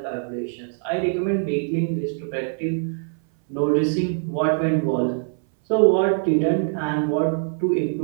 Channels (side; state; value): left; silent; 60 dB below the other